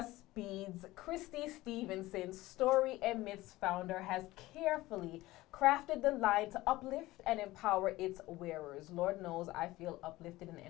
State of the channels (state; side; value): quieter; right; 18.1 dB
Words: beads. Christy Stevenson, Story and Myths founder, has carefully crafted the line to uplift and empower its wearers. Lord knows I feel uplifted and